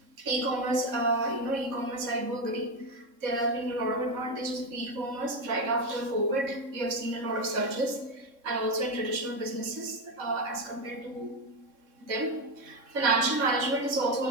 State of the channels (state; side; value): late; left; 3.7 ms